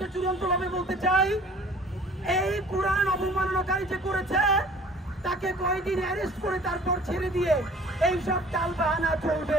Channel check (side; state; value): both; normal; correlation 0.50